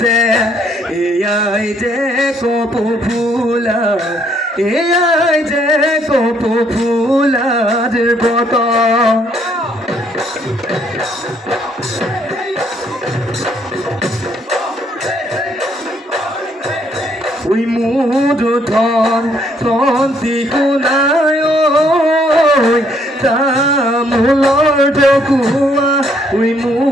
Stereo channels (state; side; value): normal; both; correlation 0.68